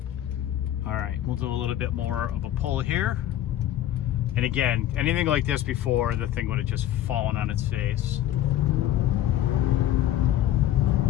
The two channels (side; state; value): right; quieter; 12.4 dB